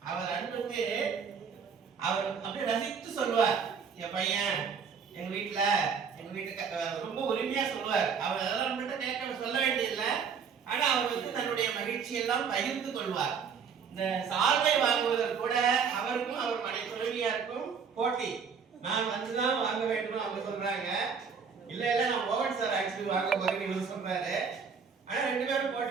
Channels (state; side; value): quieter; left; 6.2 dB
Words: அவர் அன்புக்கு அவர் அப்படியே ரசித்து சொல்லுவார். என் பையன் எங்க வீட்டுக்கு ரொம்ப உரிமையா சொல்லுவார். அவர் அதெல்லாம் நம்மகிட்ட கேட்க சொல்ல வேண்டியதில்லை. ஆனா அவருக்கு தன்னுடைய மகிழ்ச்சி எல்லாம் பகிர்ந்து கொள்வார். இந்த சால்வை வாங்குவதற்கு கூட அவருக்கும் அவர் மனை துணைவியாருக்கும் போட்டி. நான் வந்துதான் வாங்க வேண்டும் அவங்க சொல்றாங்க. இல்ல நான் மோகன் சார் ஆக்சுவலி வாங்க போறேன்னு இவர் சொல்றாரு. ஆனா ரெண்டு பேரும்